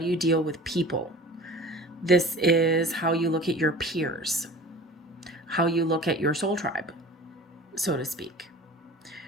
you deal with people? This is how you look at your peers, how you look at your soul tribe, so to speak.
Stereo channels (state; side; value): normal; both; correlation 0.41